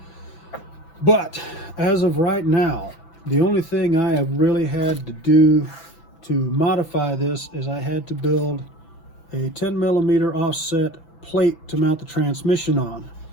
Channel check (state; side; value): late; right; 6.0 ms